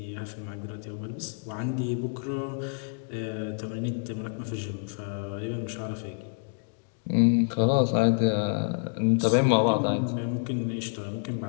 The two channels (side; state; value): right; silent; 59 dB below the other